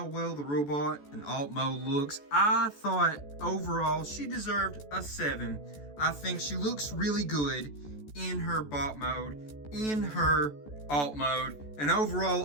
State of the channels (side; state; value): right; late; 14 ms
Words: well the robot and alt mode looks. I thought overall she deserved a 7. I think she looks really good in her bot mode, in her alt mode, and